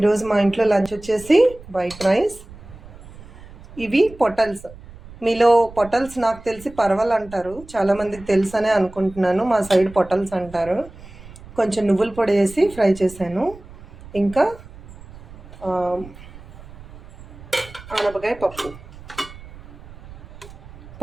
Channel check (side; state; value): right; noise; rumble, 18 dB below the sound